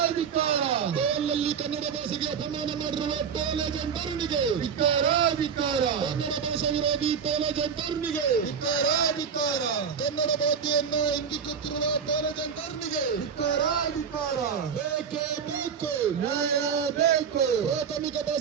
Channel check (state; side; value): quieter; left; 6.8 dB